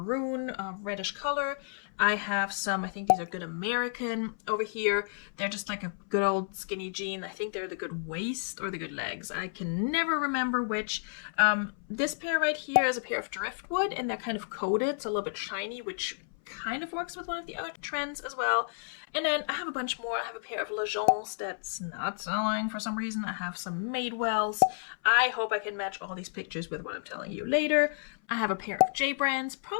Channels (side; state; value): right; silent; 57 dB below the other